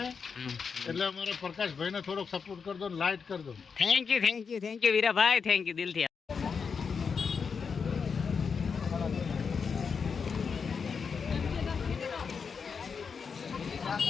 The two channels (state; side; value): quieter; right; 5.8 dB